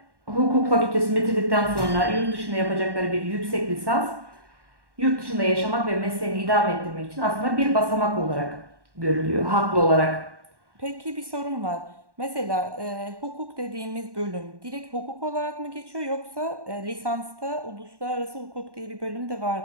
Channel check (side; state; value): left; late; 1.1 ms